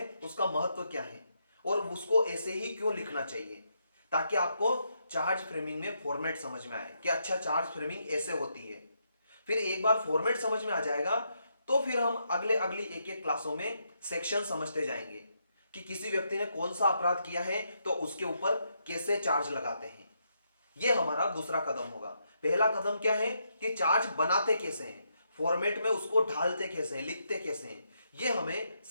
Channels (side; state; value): both; inverted; correlation -0.79